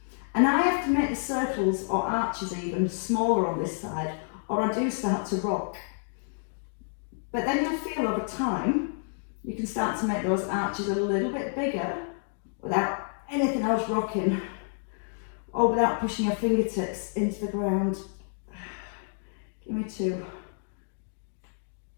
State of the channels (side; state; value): right; silent; digital silence